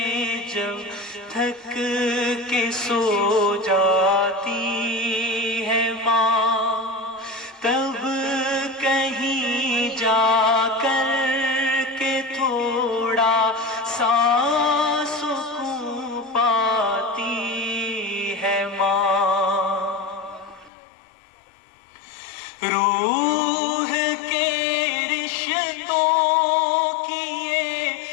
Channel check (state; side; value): drops out; right; at 20.7 s